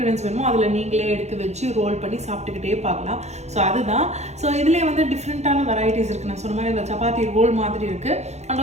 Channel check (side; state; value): left; late; 0.32 ms